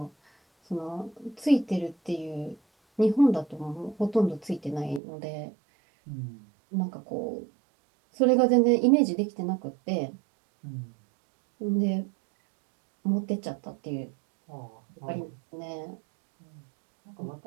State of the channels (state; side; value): drops out; left; at 5.0 s